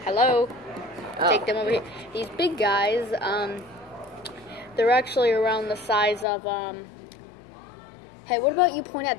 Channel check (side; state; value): right; drops out; at 6.2 s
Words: hello. Take them over here. These big guys, they're actually around the size of, hey, what about you point at